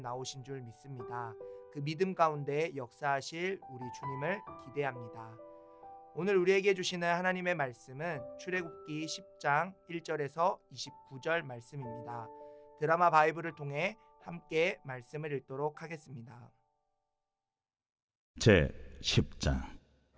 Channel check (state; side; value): identical; both; correlation 1.00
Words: 줄 믿습니다. 그 믿음 가운데 역사하실 우리 주님을 기대합니다. 오늘 우리에게 주시는 하나님의 말씀은 출애굽기 10장 1절에서 29절 말씀입니다. 드라마 바이블을 통해 함께 말씀을 읽도록 하겠습니다. 제 10장.